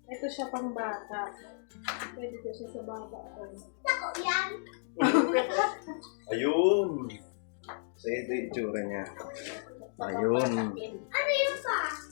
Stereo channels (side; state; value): right; silent; digital silence